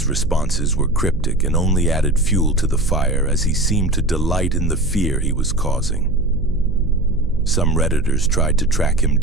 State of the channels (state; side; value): noise; right; hum, 6 dB below the sound